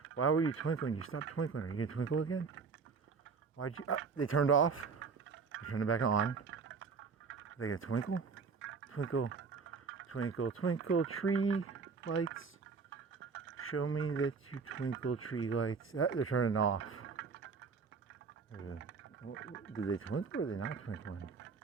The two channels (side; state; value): left; quieter; 5.2 dB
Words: Why were you twinkling? You stopped twinkling. Are you going to twinkle again? Why'd you... they turned off. They're turning it back on. Are they going to twinkle? Twinkle, twinkle, twinkle, tree lights. Show me that you twinkle, tree lights. They're turning off. Did they twinkle or are they not twinkling?